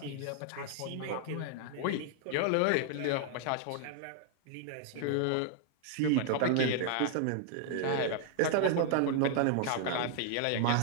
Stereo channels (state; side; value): different; both; correlation 0.00